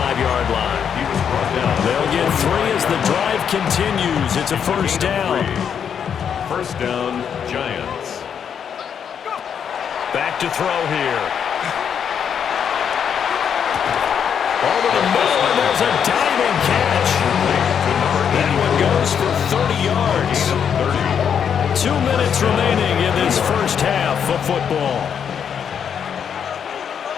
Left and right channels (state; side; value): quieter; right; 7.8 dB